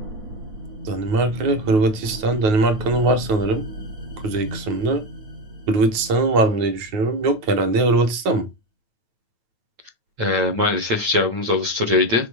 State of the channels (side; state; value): left; late; 9.3 ms